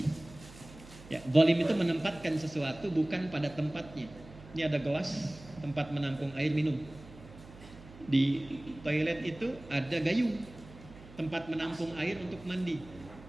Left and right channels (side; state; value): right; noise; hum, 19 dB below the sound